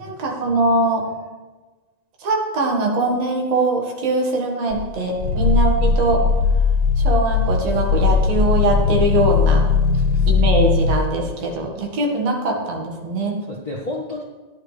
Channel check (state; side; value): late; left; 1.9 ms